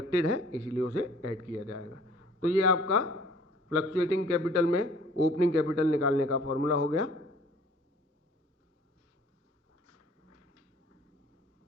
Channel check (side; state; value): both; normal; correlation 0.52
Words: है, इसीलिए उसे ऐड किया जाएगा। तो ये आपका फ्लक्चुएटिंग कैपिटल में ओपनिंग कैपिटल निकालने का फॉर्मूला हो गया।